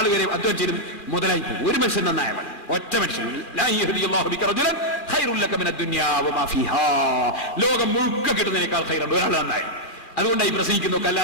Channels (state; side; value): late; right; 2.3 ms